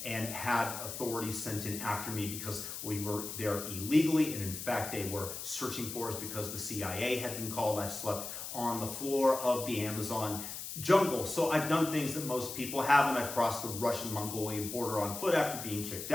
and had authorities sent in after me because we were there illegally. And in fact, they were searching for us because the CIA had been called. I've slept on the floor of the Amazon jungle. So I've done things that most people haven't. I've crossed the Russian-Mongolian border on foot after being kicked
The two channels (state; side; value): noise; left; hiss, 7 dB below the sound